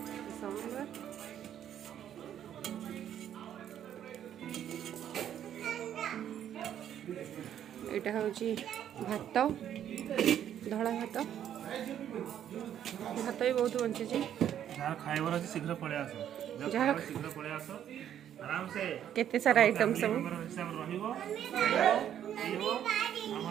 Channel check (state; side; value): quieter; left; 10.2 dB